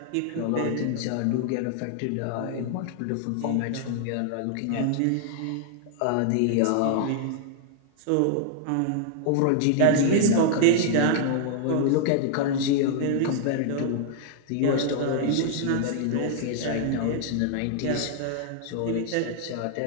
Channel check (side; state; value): both; different; correlation 0.00